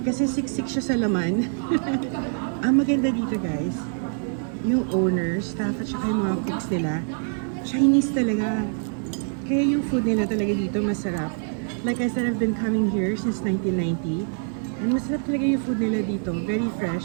Kasi siksik siya sa laman. Ang maganda dito guys, yung owner, staff, at saka yung mga cooks nila, Chinese talaga. Kaya yung food nila talaga dito masarap. Like I said, I've been coming here since 1990. And masarap talaga yung food nila dito. Very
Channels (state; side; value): silent; left; 59 dB below the other